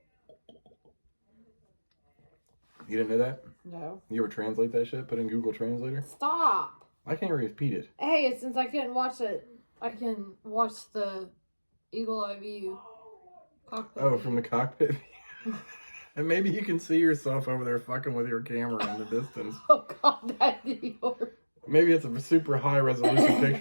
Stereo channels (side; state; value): both; inverted; correlation -1.00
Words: You didn't know that? No. You ever translate that shit? Put in Google Translator? Stop. I can't repeat it. Hey, since I couldn't watch it, I can watch the Eagle Eye View cockpit. Oh, from the cockpit? And maybe you can see yourself over there fucking with your camera in the distance. Oh, God, that'd be horrible. Maybe it's a super high resolution